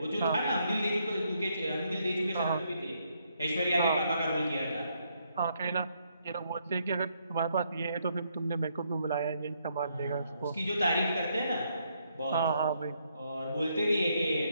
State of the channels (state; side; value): inverted; both; correlation -0.74